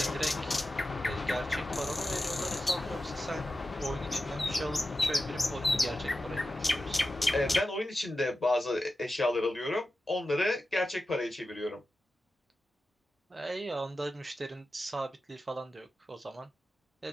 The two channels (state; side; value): normal; both; correlation 0.92